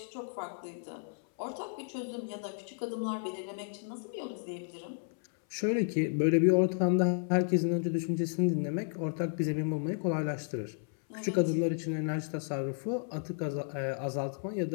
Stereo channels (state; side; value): silent; right; 56 dB below the other